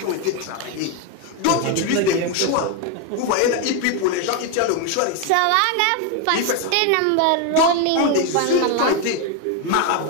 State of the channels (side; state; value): both; different; correlation 0.01